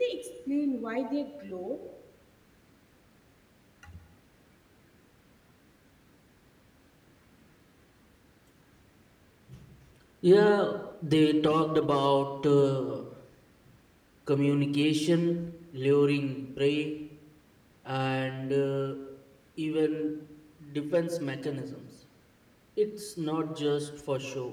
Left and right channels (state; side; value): identical; both; correlation 1.00